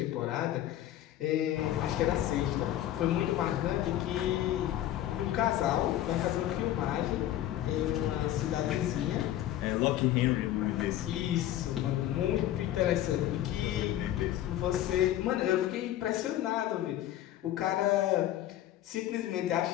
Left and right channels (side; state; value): right; quieter; 12.9 dB